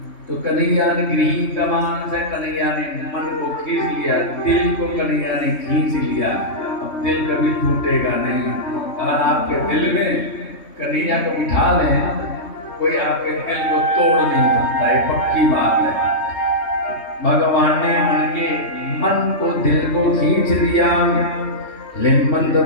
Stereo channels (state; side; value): late; right; 3.2 ms